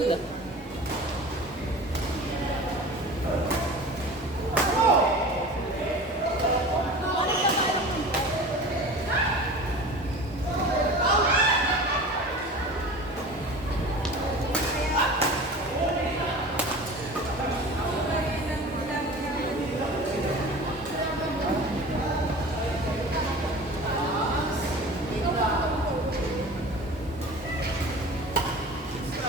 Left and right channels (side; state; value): both; normal; correlation 0.37